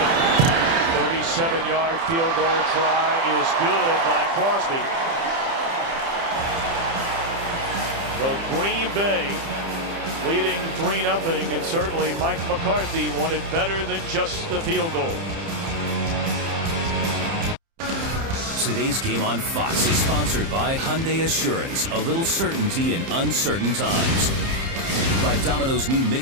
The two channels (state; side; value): late; left; 30 ms